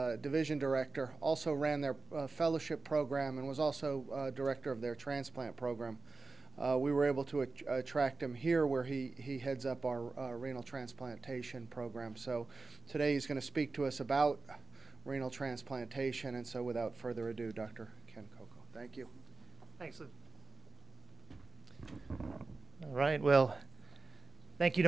division director, also ran their fellowship program, and was also director of their transplant program. We were able to attract him here, where he heads up our renal transplantation program. So today he's going to speak to us about renal transplantation, and so without further ado, Dr. Ken Coco. Thank you. Thanks, Lou. All right, well, thank you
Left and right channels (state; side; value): quieter; left; 4.0 dB